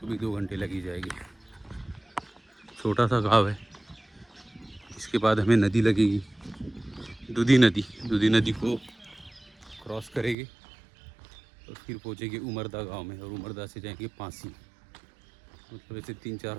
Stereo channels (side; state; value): left; drops out; at 10.4 s